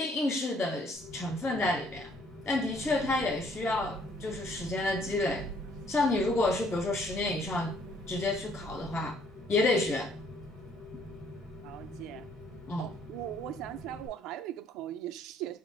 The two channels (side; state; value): both; normal; correlation 0.63